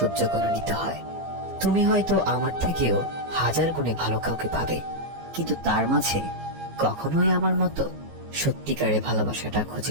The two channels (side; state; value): left; late; 15 ms